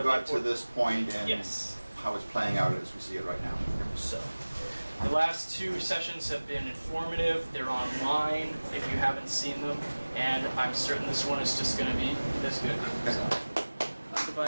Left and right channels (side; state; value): both; inverted; correlation -1.00